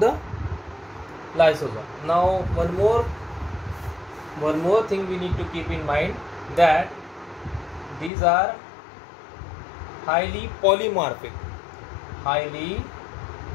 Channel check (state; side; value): drops out; right; at 8.1 s